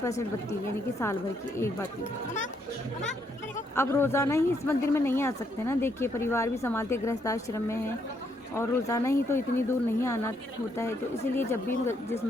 बत्ती यानी कि साल भर की एक बत्ती। अब रोज़ाना ही इस मंदिर में नहीं आ सकते ना, देखिए परिवार भी संभालते, गृहस्थ आश्रम में है और रोज़ाना ही तो इतनी दूर नहीं आना होता है, तो इसीलिए जब भी जिस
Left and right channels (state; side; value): normal; both; correlation 0.74